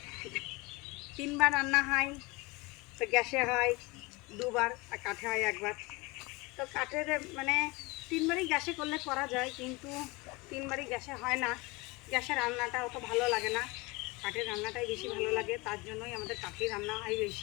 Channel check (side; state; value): right; quieter; 24.4 dB